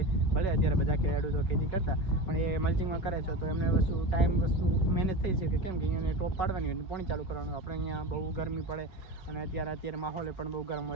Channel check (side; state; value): right; late; 5.3 ms